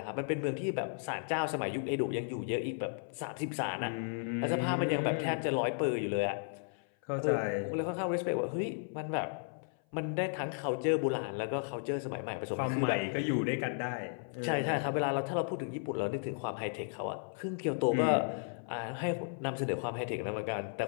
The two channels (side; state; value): right; silent; 55 dB below the other